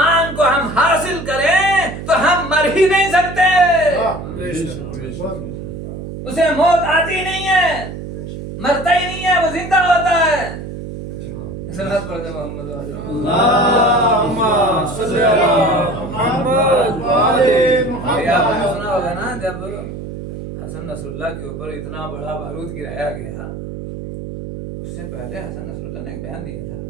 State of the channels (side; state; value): right; noise; hum, 9 dB below the sound